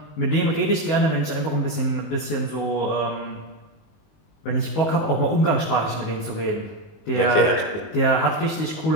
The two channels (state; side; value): late; right; 19 ms